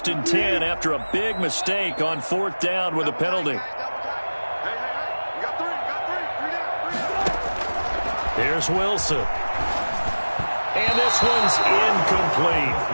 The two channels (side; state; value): both; inverted; correlation -1.00